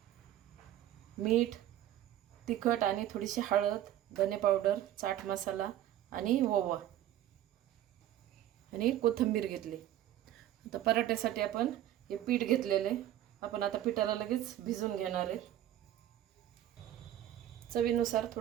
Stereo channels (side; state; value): left; quieter; 12.4 dB